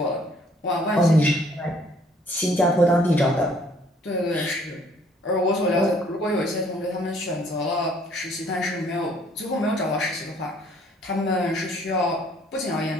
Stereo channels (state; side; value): normal; both; correlation 0.61